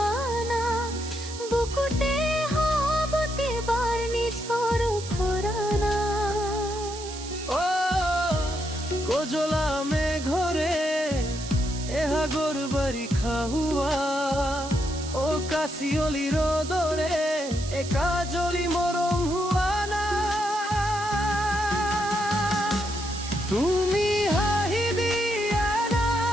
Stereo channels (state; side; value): noise; right; hiss, 12 dB below the sound